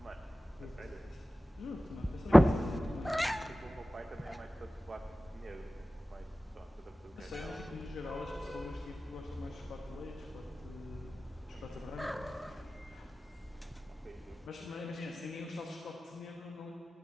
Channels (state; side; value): normal; both; correlation 0.97